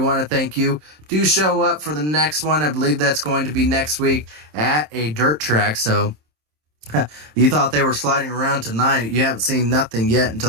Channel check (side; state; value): left; late; 27 ms